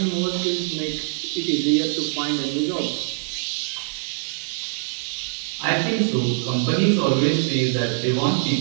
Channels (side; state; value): left; silent; digital silence